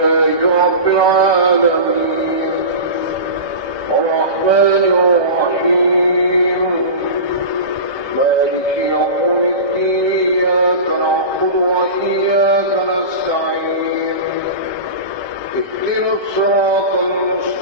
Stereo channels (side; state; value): right; late; 1.2 ms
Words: رب العالمين الرحمن الرحيم مالك يوم الدين إياك نعبد وإياك نستعين اهدنا الصراط